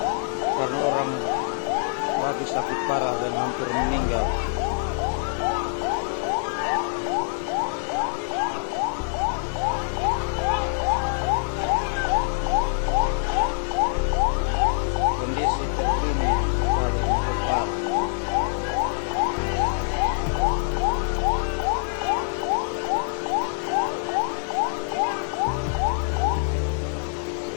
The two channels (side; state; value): right; silent; digital silence